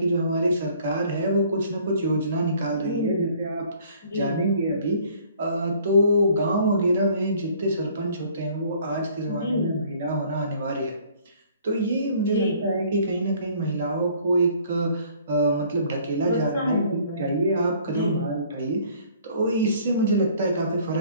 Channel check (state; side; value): inverted; both; correlation -0.57